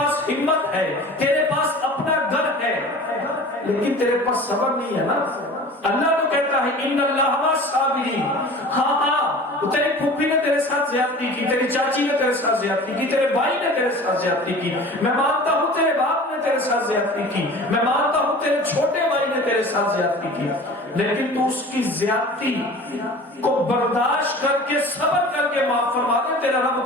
ہمت ہے، تیرے پاس اپنا گھر ہے، لیکن تیرے پاس صبر نہیں ہے نا۔ اللہ تو کہتا ہے ان اللہ مع الصابرین۔ ہاں تیری پھوپھی نے تیرے ساتھ زیادتی کی، تیری چاچی نے تیرے ساتھ زیادتی کی، تیرے بھائی نے تیرے ساتھ زیادتی کی، میں مانتا ہوں تیرے باپ نے تیرے ساتھ زیادتی کی، میں مانتا ہوں تیرے چھوٹے بھائی نے تیرے ساتھ زیادتی کی، لیکن تو اس کی زیادتی کو برداشت کر کے صبر کر کے معاف فرما دے، تیرا رب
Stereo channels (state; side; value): normal; both; correlation 0.40